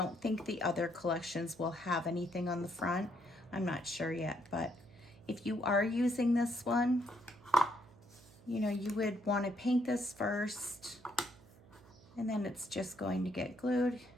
think the other collections will have anything on the front. I'm not sure yet, but if you are using this one, you know, you would want to paint this first, and then it's just going to get glued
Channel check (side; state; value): right; noise; hum, 24 dB below the sound